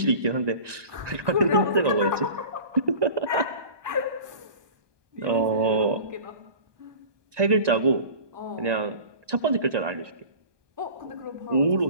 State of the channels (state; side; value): late; left; 1.2 ms